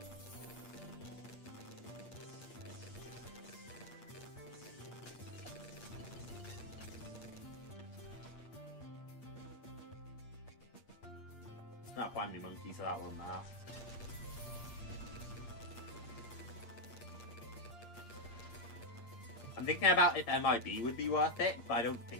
Not find me monkey, so that won't matter. I'm thinking about if MIB would be worth it, but I don't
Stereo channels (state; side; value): late; right; 8.5 ms